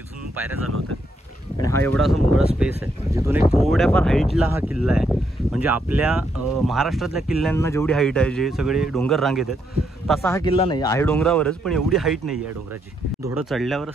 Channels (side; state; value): both; normal; correlation 0.77